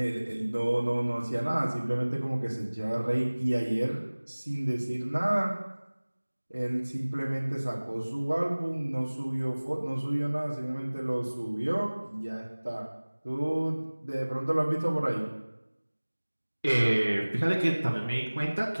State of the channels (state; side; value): inverted; both; correlation -1.00